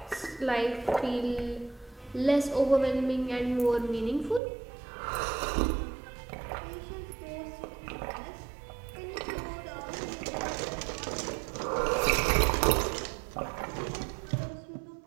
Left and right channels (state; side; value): drops out; left; at 4.4 s